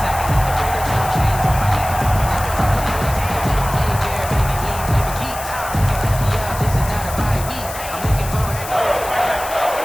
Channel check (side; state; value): left; noise; hiss, 11 dB below the sound